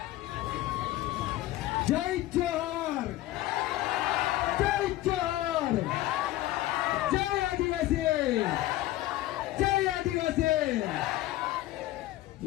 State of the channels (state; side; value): quieter; right; 15.9 dB